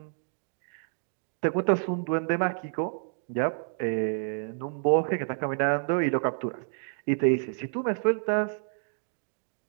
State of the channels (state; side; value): silent; left; digital silence